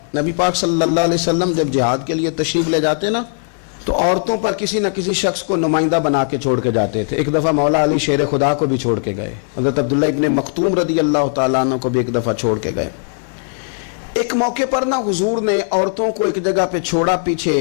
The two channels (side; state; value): right; silent; digital silence